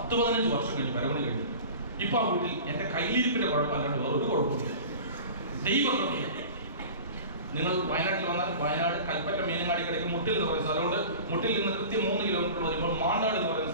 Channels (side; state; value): both; inverted; correlation -0.38